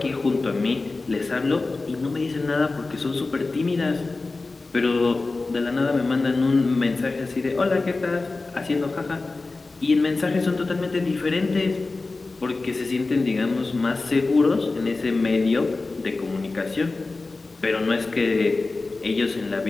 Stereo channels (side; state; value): right; quieter; 3.5 dB